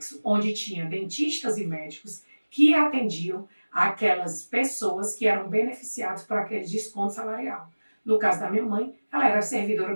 onde tinha dentistas e médicos que atendiam aquelas pessoas que eram beneficiadas por aquele desconto salarial. No caso da minha mãe, ela era servidora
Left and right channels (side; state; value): both; inverted; correlation -1.00